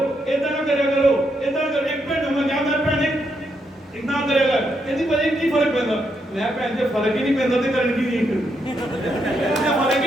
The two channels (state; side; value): normal; both; correlation 0.79